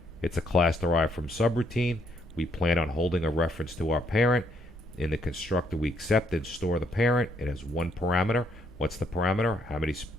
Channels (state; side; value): normal; both; correlation 0.72